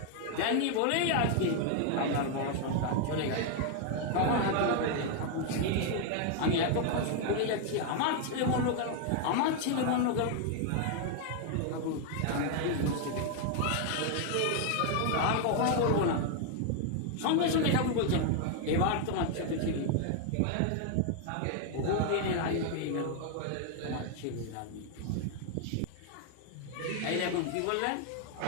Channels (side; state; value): both; different; correlation 0.00